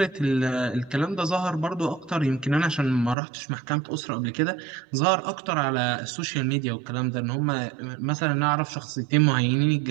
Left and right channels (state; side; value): drops out; left; at 3.2 s